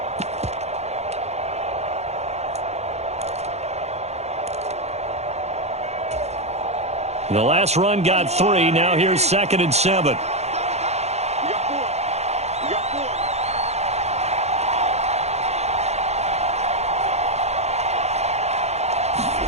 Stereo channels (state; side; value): late; left; 0.31 ms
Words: The last run got 3. Now here's 2nd and 7.